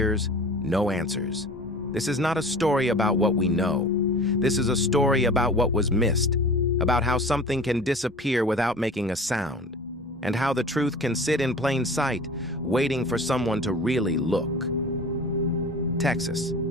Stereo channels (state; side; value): normal; both; correlation 0.40